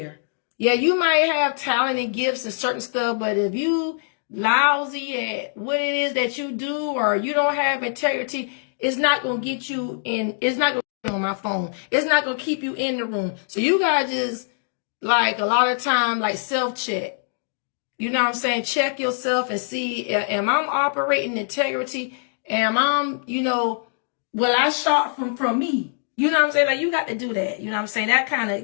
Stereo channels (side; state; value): right; silent; digital silence